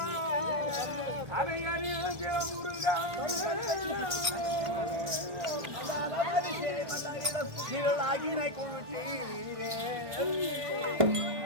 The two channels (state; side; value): late; left; 1.6 ms